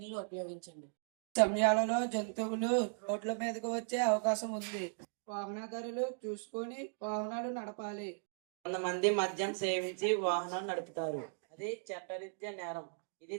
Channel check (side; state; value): left; silent; digital silence